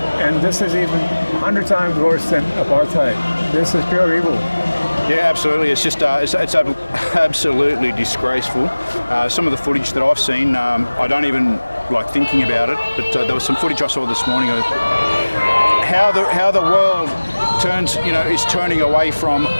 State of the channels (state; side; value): inverted; both; correlation -1.00